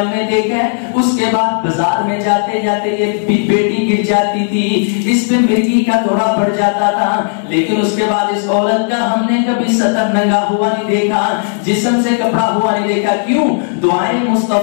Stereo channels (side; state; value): right; silent; 66 dB below the other